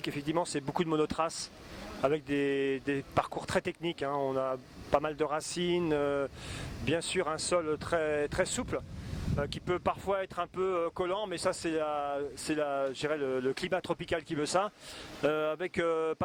effectivement, c'est beaucoup de monotraces avec des parcours très techniques. On a pas mal de racines, bien sûr un sol très, très souple, qui peut parfois être un peu collant, mais ça c'est je dirais le climat tropical qui veut ça, avec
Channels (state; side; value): identical; both; correlation 1.00